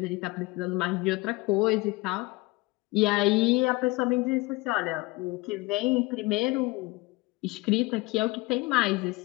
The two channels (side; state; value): right; quieter; 22.8 dB